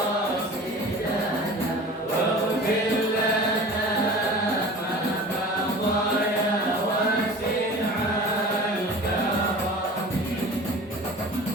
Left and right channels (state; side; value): normal; both; correlation 0.40